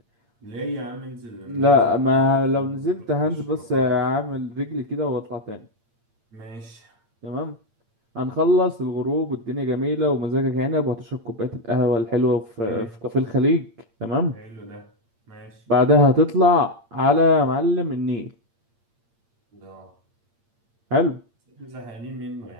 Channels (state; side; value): late; left; 8.7 ms